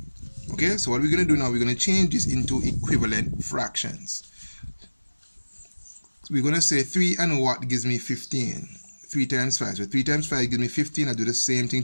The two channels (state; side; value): inverted; both; correlation -1.00